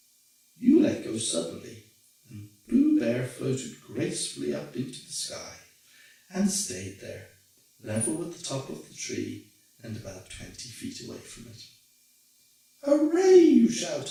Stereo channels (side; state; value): both; identical; correlation 1.00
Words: you let go suddenly, and Pooh Bear floated gracefully up into the sky and stayed there, level with the top of the tree and about 20 feet away from it. "Hooray!" you